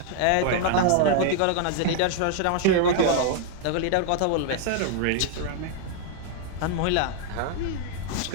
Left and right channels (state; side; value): different; both; correlation 0.00